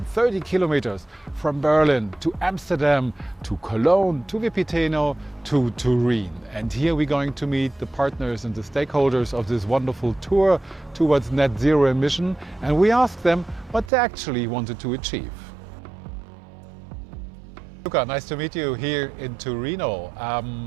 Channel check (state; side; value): drops out; left; at 13.9 s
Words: kilometers from Berlin to Amsterdam, to Cologne, to Vipiteno, to Turin. And here we're going to meet the partners and the stakeholders of this wonderful tour towards net zero emission. And we asked them what they actually wanted to achieve. Luca, nice to meet you here in Torino.